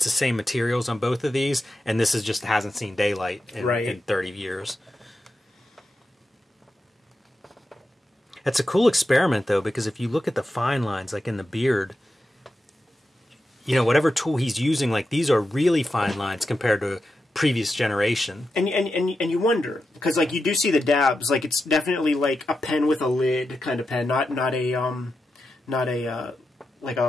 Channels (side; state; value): both; normal; correlation 0.89